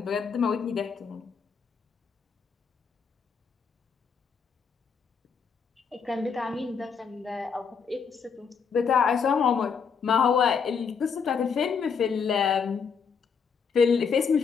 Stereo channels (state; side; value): quieter; right; 6.2 dB